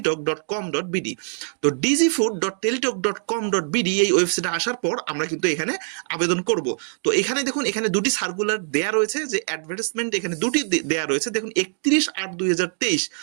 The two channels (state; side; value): silent; left; 63 dB below the other